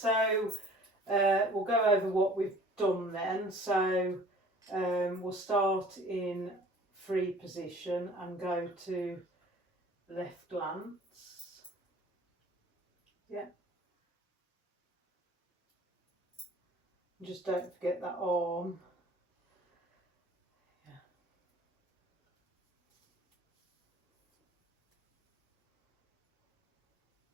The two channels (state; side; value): normal; both; correlation 0.49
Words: we'll go over what we've done then. So we'll start in free position and go to left glance. Yeah. Just don't forget that arm. Yeah.